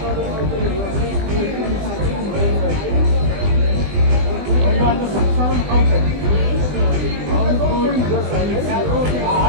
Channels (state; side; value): late; left; 20 ms